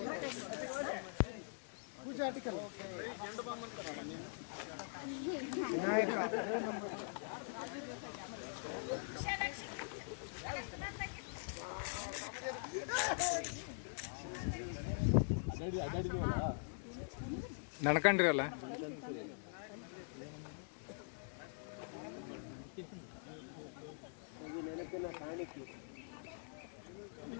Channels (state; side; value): silent; right; digital silence